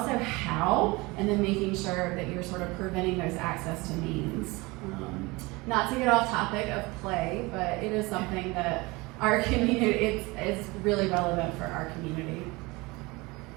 how, and then making sure that you're sort of preventing those access to means. Not to get off topic of play, but it is something that our community, it's really relevant for our community.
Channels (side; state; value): left; quieter; 23.7 dB